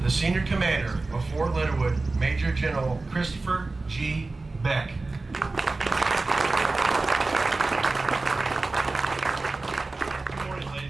the senior commander of Fort Leonard Wood, Major General Christopher G. Beck. Good morning,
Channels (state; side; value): quieter; left; 3.4 dB